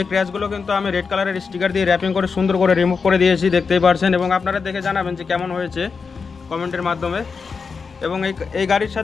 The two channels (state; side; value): quieter; right; 5.2 dB